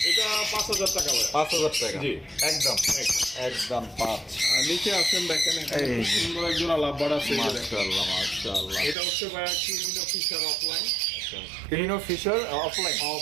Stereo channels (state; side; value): drops out; left; at 9.0 s